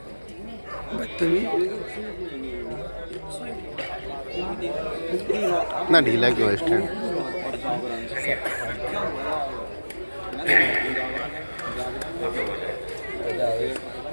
بدتمیز اتنا ڈھیلا کیوں ہے اسٹینڈ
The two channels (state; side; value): inverted; both; correlation -1.00